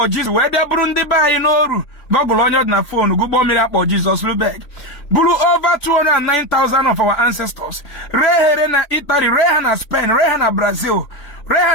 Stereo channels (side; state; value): right; late; 3.5 ms